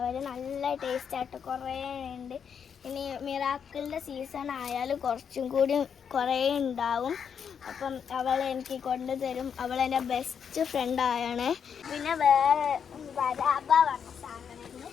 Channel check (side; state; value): right; quieter; 7.3 dB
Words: നല്ല ടേസ്റ്റായിട്ട് കുറേ ഉണ്ട്. ഇനി മിറാക്കിളിൻ്റെ സീസൺ ആയാലും കുറച്ചും കൂടി കുറേ ഉണ്ടാവും. അപ്പം അവൾ എനിക്ക് കൊണ്ടുതരും. അവൾ എൻ്റെ ബെസ്റ്റ് ഫ്രണ്ടായാണ്. പിന്നെ വേറെ ബരാബ പറഞ്ഞ സാധനമുണ്ട്,